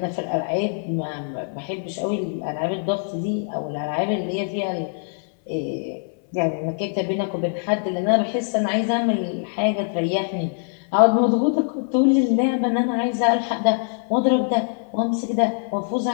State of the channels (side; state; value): right; silent; 63 dB below the other